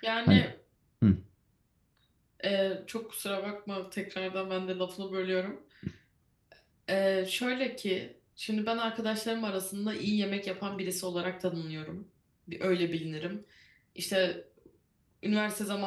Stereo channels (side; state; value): both; identical; correlation 1.00